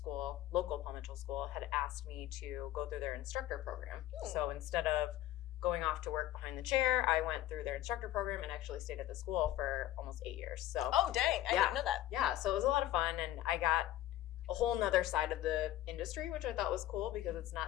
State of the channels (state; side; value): quieter; right; 14.1 dB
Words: local Paul Mitchell School, had asked me to go through their instructor program. So instead of going off to work behind the chair, I went through their instructor program and actually stayed at the school for almost 8 years. So oh dang, I didn't know that. Yeah, so it was a lot of fun, and I got a whole nother side of the industry, which I thought was cool because it's